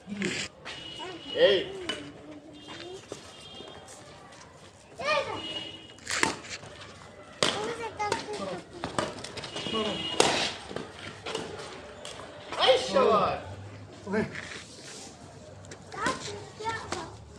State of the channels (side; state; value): both; identical; correlation 1.00